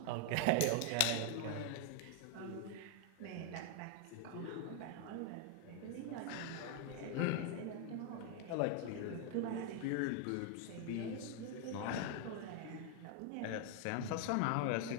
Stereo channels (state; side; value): different; both; correlation 0.00